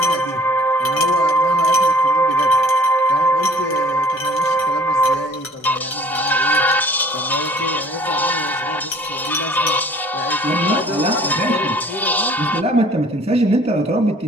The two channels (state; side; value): normal; both; correlation 0.53